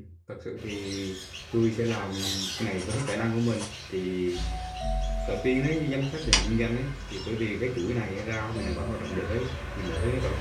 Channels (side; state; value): both; identical; correlation 1.00